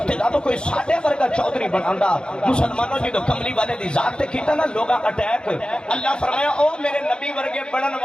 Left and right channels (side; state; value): right; late; 0.050 ms